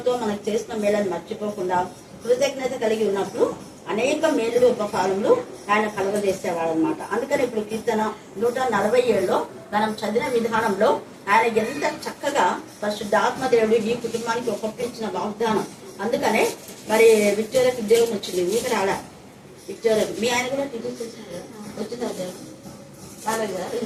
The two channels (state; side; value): identical; both; correlation 1.00